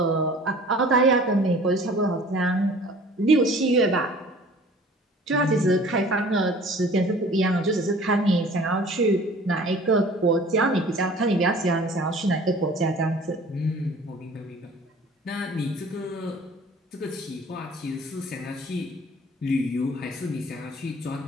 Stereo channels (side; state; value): both; normal; correlation 0.48